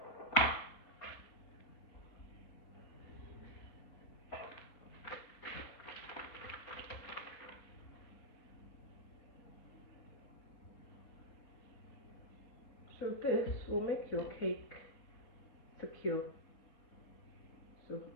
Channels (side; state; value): right; late; 4.1 ms